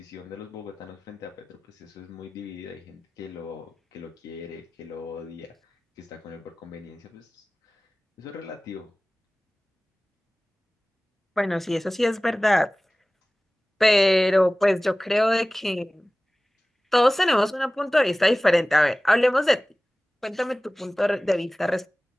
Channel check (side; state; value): both; normal; correlation 0.98